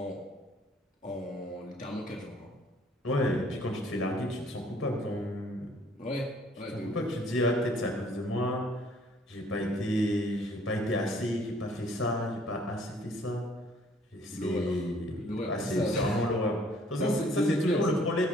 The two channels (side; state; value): both; normal; correlation 0.59